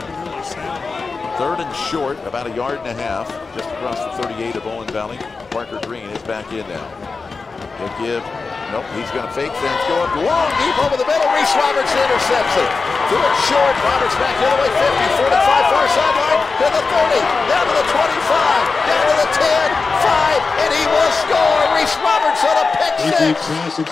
really sound. 3rd and short, about 1.5 yards, just across the 38 of Owen Valley. Parker Green is back in now. He'll give, nope, he's going to fake things, go up long, deep over the middle. Reese Roberts intercepts it. Threw it short, Roberts back the other way, 50, 45, far sideline, to the 30, down to the 25, down to the 10, 5, and he will score. Reese Roberts on a pick six.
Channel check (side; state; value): right; quieter; 4.3 dB